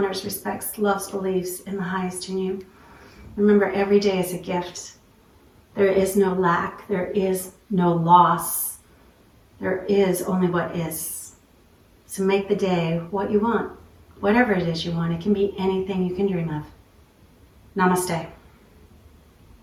respects, loves, believes in the highest in you. Remember, every day is a gift. There is no lack. There is no loss. There is only what is. So make the day what you want, whatever it is you want. It can be anything you can dream of. Namaste.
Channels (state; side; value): identical; both; correlation 1.00